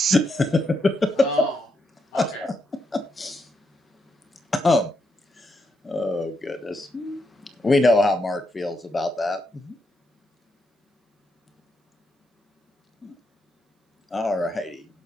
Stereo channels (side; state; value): both; normal; correlation 0.80